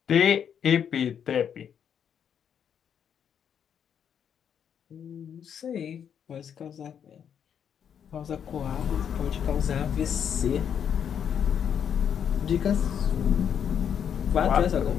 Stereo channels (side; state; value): right; quieter; 8.3 dB